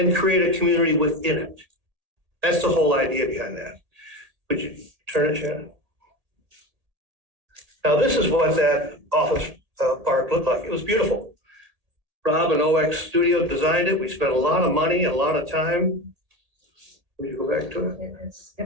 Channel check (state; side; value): late; left; 1.8 ms